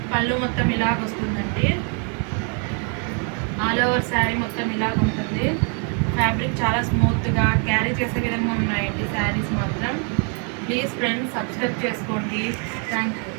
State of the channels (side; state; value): left; quieter; 38.9 dB